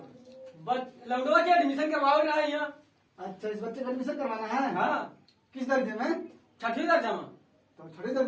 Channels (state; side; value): identical; both; correlation 1.00